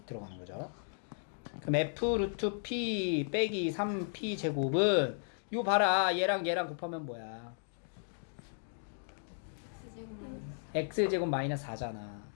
들어가는 거죠. 그럼 f 루트 p 빼기 3p 제곱은 요 봐라 얘랑 얘랑 곱하면 뭐야? x 제곱 마이너스 4잖아.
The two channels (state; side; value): silent; right; digital silence